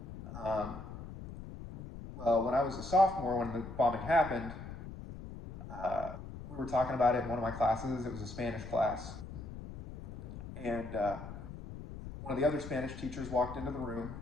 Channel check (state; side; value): noise; left; rumble, 11 dB below the sound